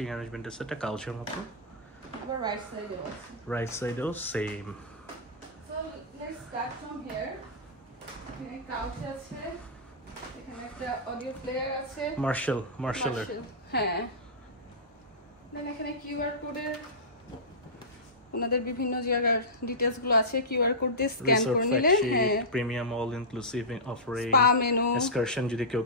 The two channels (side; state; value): both; normal; correlation -0.15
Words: অ্যারেঞ্জমেন্ট আছে, একটা কাউচের মতো। আবার রাইট সাইডে আছে। রাইট সাইডেও same. So let's start from here. এখানে কাউচ আছে, এখানে একটা অডিও প্লেয়ার আছে, মার্শালের। হ্যাঁ। দেন এখানে কিউআর কোডের ওনাদের বিভিন্ন জায়গার ডিটেইলস গুলো আছে, কিউআর কোড দিয়ে স্ক্যান করে নিলে হ্যাঁ, premium all inclusive offering, spa menu, excursion যদি কেউ